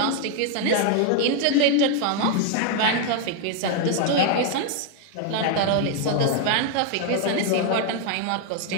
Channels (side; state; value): both; different; correlation 0.00